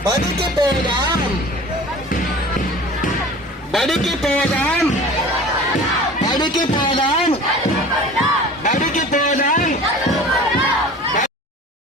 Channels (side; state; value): both; normal; correlation 0.41